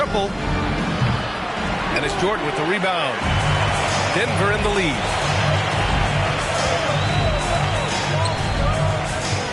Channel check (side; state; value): both; identical; correlation 1.00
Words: And it's Jordan with the rebound. Denver in the lead.